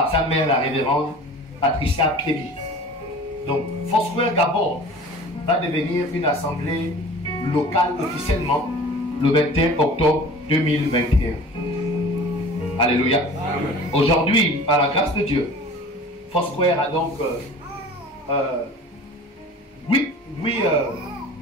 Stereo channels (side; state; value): both; normal; correlation 0.42